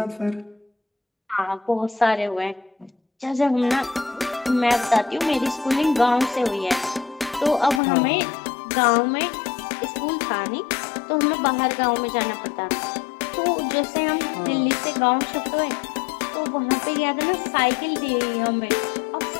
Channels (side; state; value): right; drops out; at 7.8 s